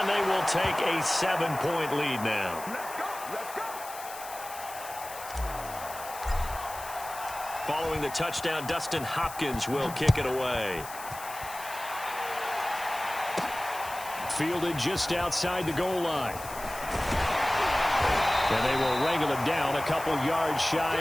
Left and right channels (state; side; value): noise; left; hiss, 13 dB below the sound